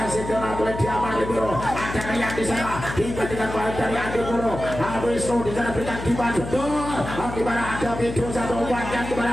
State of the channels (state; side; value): noise; left; hum, 8 dB below the sound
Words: bola oleh Diamar Libero, ada Rian di sana diberikan baik dari Adi Puro, Wisnu di sana berikan Dimas Bidol, di mana ada Video satu umpan, di